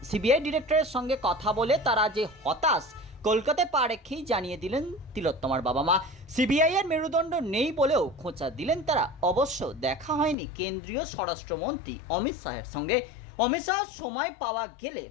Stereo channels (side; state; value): right; drops out; at 10.4 s